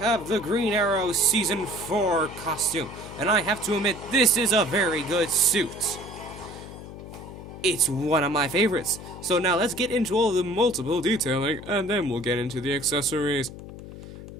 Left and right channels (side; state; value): left; noise; hum, 13 dB below the sound